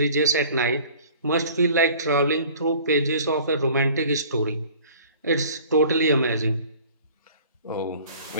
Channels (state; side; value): inverted; both; correlation -0.48